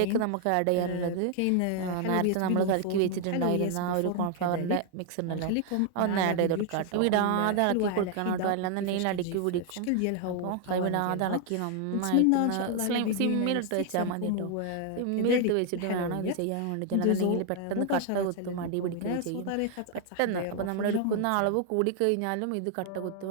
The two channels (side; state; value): both; different; correlation 0.00